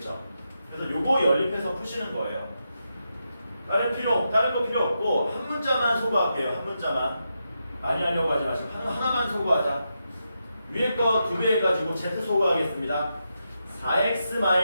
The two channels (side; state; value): both; inverted; correlation -0.85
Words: 그래서 요거 연립해서 푸시는 거예요. 다른 거 필요 없고 한 문자만 소거할게요. 한 문자만. 많이 하려고 하지 마시고 하나만 소거하자. 위에 거 2배 해가지고 z 소거하겠습니다.